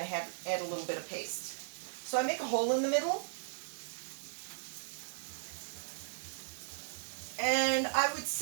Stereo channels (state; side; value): silent; left; digital silence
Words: to add a little bit of paste. So I make a hole in the middle. And I would